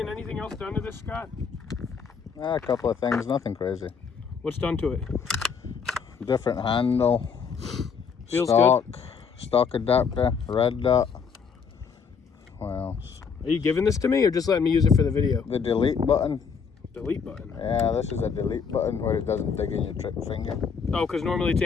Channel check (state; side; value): quieter; right; 6.1 dB